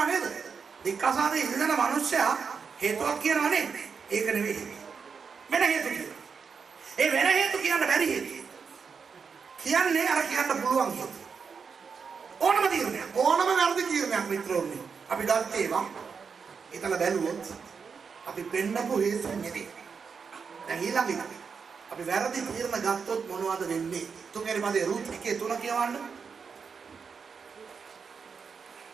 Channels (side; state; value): left; quieter; 5.8 dB